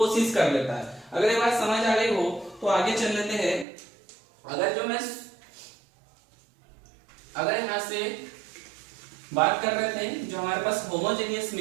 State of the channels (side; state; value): left; drops out; at 3.7 s